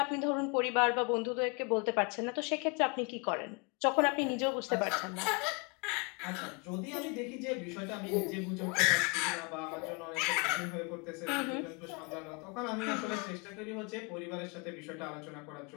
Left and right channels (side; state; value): right; quieter; 31.0 dB